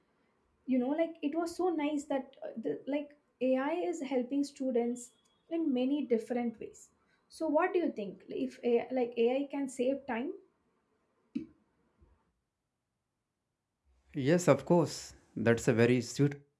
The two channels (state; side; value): identical; both; correlation 1.00